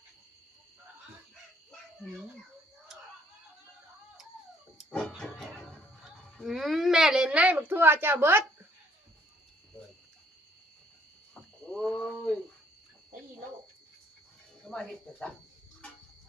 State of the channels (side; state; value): both; normal; correlation 0.64